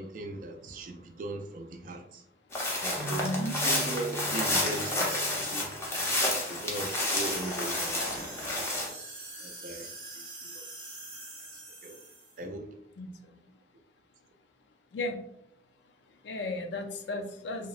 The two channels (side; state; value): both; normal; correlation 0.15